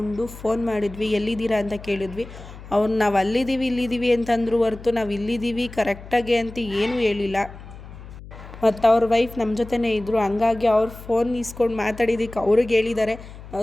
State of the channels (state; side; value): noise; left; hum, 16 dB below the sound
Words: ಫೋನ್ ಮಾಡಿದ್ವಿ. ಎಲ್ಲಿದ್ದೀರಾ ಅಂತ ಕೇಳಿದ್ವಿ. ಅವ್ರು ನಾವು ಅಲ್ಲಿದ್ದೀವಿ ಇಲ್ಲಿದ್ದೀವಿ ಅಂತಂದ್ರು ಹೊರತು ನಾವು ಇಲ್ಲಿದ್ದೀವಿ ಕರೆಕ್ಟಾಗಿ ಅಂತ ಏನೂ ಹೇಳಿಲ್ಲ. ಮತ್ತು ಅವ್ರ ವೈಫ್ ನಮ್ಮ ಜೊತೆನೇ ಇದ್ದರು. ಹಂಗಾಗಿ ಅವ್ರು ಫೋನ್ ಇಸ್ಕೊಂಡು ಮಾತಾಡಿದ್ದಕ್ಕೆ ಅವ್ರಿಗೆ ಹೇಳಿದ್ದಾರೆ